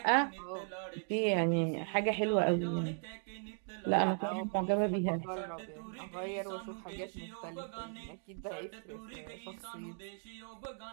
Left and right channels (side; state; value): left; silent; 53 dB below the other